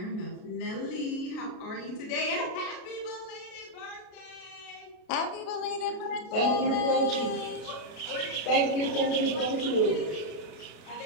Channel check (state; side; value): late; right; 32 ms